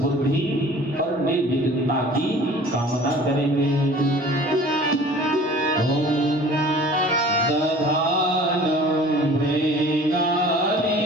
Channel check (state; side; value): normal; both; correlation 0.46